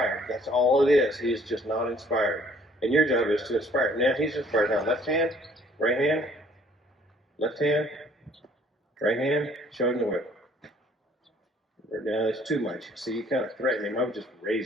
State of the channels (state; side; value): normal; both; correlation 0.59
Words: That's all it is. He is just not inspired. And your job is to inspire. Now he's inspired. Now left hand, right hand, left hand, Right hand, show him the whip. Now it's too much. See, you kind of threaten him. I would just